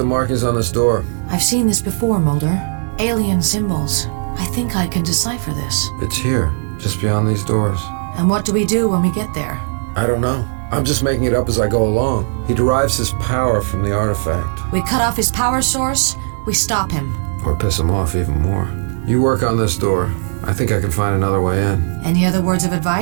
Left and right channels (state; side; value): silent; left; digital silence